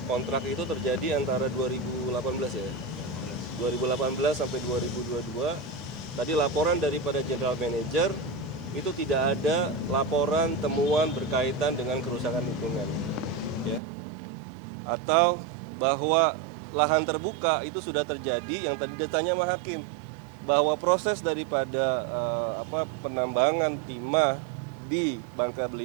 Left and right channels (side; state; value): left; drops out; at 13.8 s